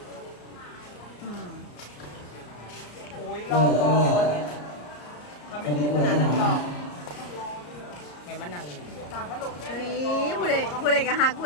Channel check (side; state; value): right; late; 34 ms